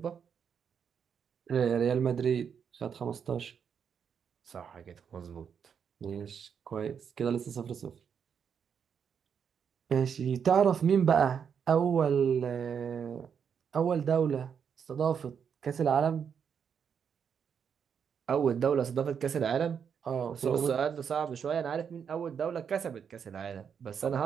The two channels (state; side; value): quieter; left; 7.3 dB